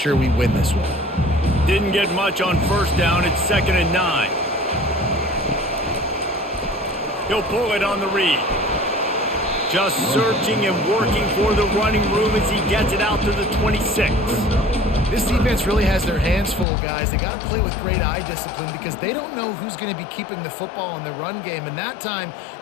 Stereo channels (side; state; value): right; drops out; at 16.7 s